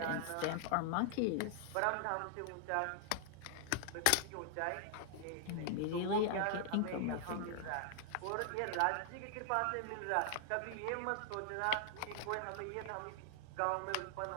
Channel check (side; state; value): both; different; correlation -0.01